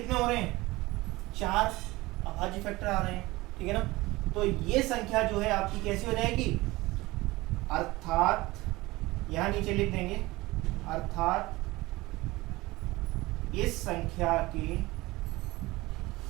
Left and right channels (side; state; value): left; quieter; 20.3 dB